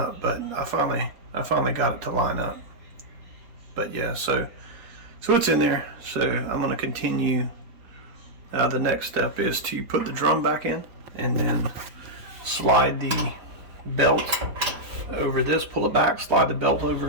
but I finally got it to line up. But yeah, so it's in there. So I'm going to continue. The next step is to put the drum back in and then slide the belt over this, pull it back, slide the belt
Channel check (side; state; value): left; late; 4.4 ms